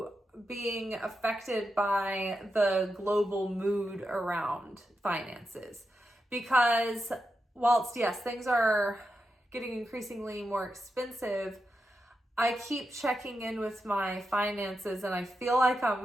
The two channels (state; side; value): normal; both; correlation 0.88